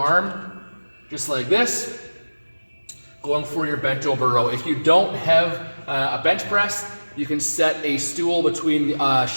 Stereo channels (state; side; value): inverted; both; correlation -1.00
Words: just like this, going for your bent over row. If you don't have a bench press, you can set a stool between the